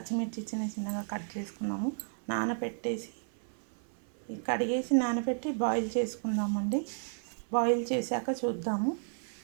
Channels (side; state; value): left; silent; 56 dB below the other